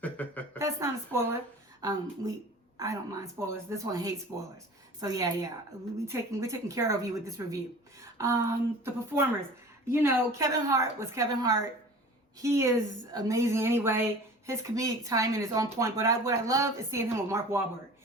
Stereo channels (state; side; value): normal; both; correlation 0.41